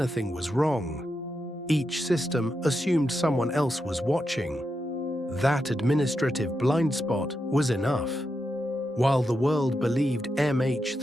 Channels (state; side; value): normal; both; correlation 0.86